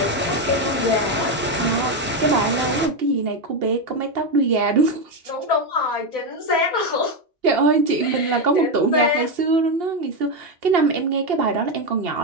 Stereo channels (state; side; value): normal; both; correlation 0.08